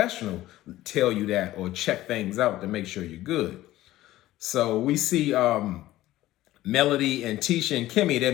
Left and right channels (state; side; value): quieter; right; 15.6 dB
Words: tell you that, or check things out to make sure you're good. So we see Melody and Tisha and Kimmy,